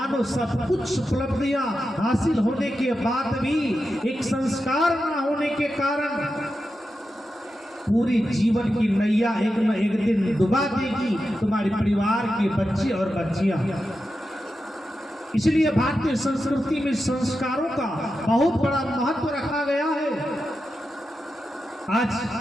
सब कुछ उपलब्धियां हासिल होने के बाद भी एक संस्कार न होने के कारण पूरी जीवन की नैया एक न एक दिन डुबा देगी तुम्हारे परिवार के बच्चे और बच्चियां। इसलिए भारतीय संस्कृति में संस्कारों का बहुत बड़ा महत्व रखा गया है। आज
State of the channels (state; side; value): normal; both; correlation 0.90